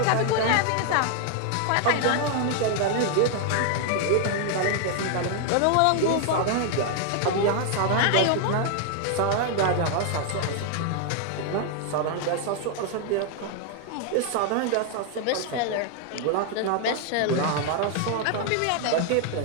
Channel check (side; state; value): both; different; correlation 0.00